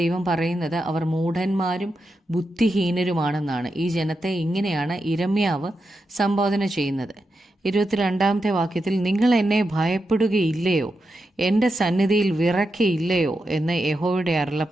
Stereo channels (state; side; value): normal; both; correlation 0.87